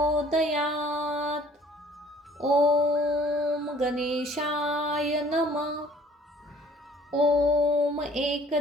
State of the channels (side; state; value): both; normal; correlation 0.56